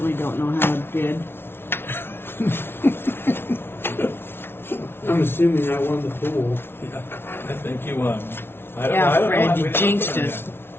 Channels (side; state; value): right; late; 0.11 ms